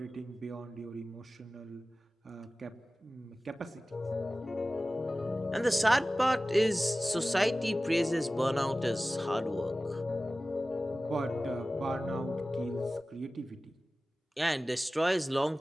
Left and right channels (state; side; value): normal; both; correlation 0.96